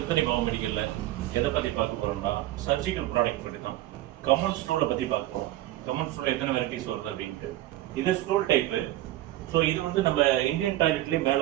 பாவ மெடிக்கல்ல எதை பத்தி பார்க்க போறோம்னா சர்ஜிக்கல் ப்ராடக்ட் பத்தி தான். கமல் ஸ்டூலை பத்தி பார்ப்போம். கமல் ஸ்டூல் எத்தனை வெரைட்டிஸ் வருது அப்படின்ட்டு. இது ஸ்டூல் டைப்பு. ஸோ இது வந்து நம்ம இந்தியன் டாய்லெட்லேயே மேலே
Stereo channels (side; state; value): left; quieter; 15.5 dB